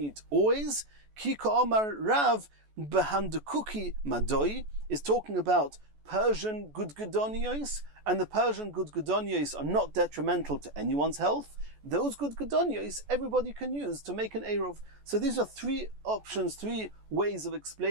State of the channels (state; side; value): late; left; 14 ms